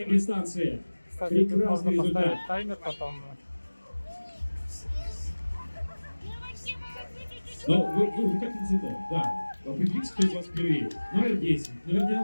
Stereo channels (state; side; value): inverted; both; correlation -1.00